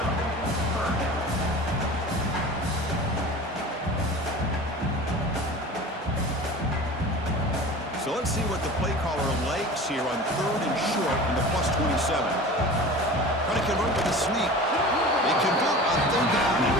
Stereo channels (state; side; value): normal; both; correlation 0.37